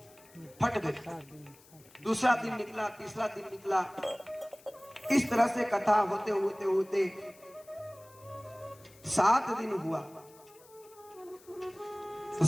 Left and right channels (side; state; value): left; noise; hiss, 25 dB below the sound